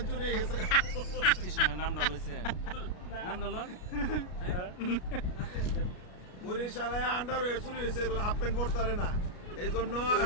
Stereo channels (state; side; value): late; right; 33 ms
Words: চুরি হয়ে গেছে। বরিশালে আন্ডার হয়ে চুরি হয়েছে, হাফ প্যান্ট পরতারে না, এই জন্য।